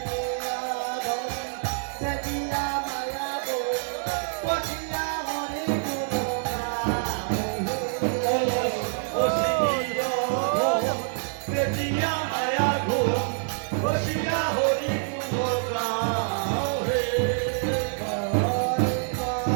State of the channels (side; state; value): left; silent; digital silence